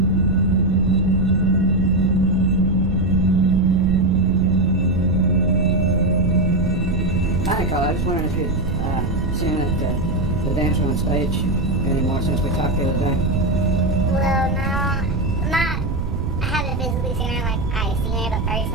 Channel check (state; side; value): noise; right; rumble, 4 dB below the sound